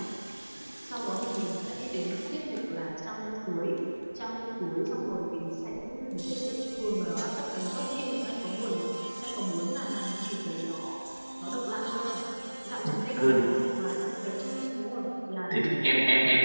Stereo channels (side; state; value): both; inverted; correlation -1.00